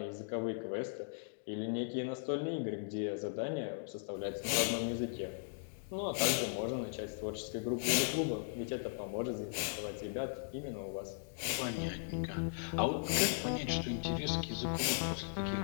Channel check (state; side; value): silent; right; digital silence